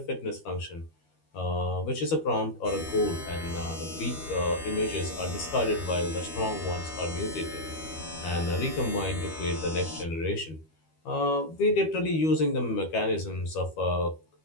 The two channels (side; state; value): right; late; 13 ms